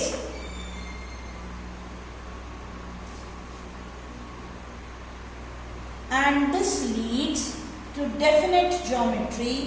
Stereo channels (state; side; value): identical; both; correlation 1.00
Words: and this leads to definite